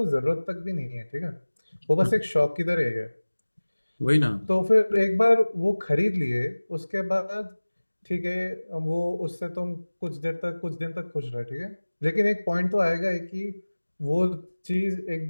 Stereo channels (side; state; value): both; inverted; correlation -1.00